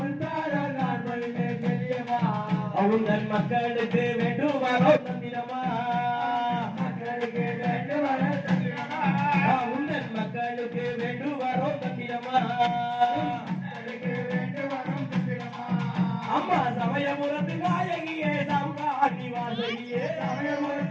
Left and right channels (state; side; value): identical; both; correlation 1.00